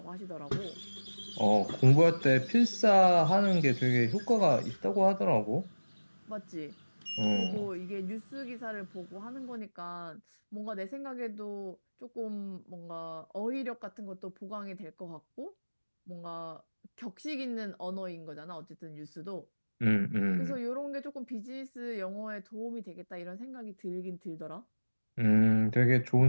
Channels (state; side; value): inverted; both; correlation -1.00